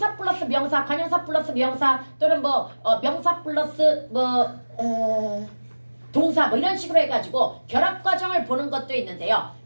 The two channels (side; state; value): both; inverted; correlation -1.00